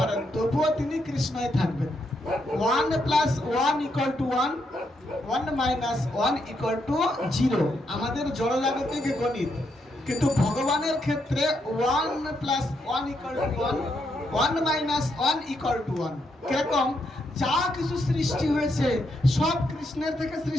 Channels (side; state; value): both; normal; correlation 0.79